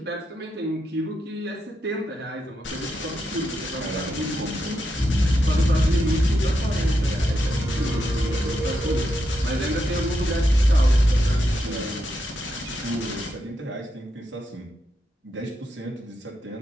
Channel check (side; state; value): both; normal; correlation 0.84